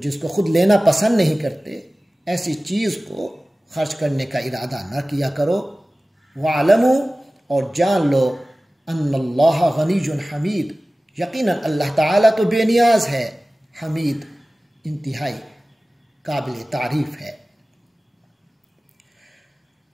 جس کو خود لینا پسند نہیں کرتے ایسی چیز کو خرچ کرنے کا ارادہ نہ کیا کرو۔ وَاعْلَمُوا، اور جان لو، ان اللہ غنی حمید، یقیناً اللہ تعالیٰ تو بے نیاز ہے، حمید انتہائی قابل تعریف ہے۔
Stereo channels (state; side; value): normal; both; correlation 0.97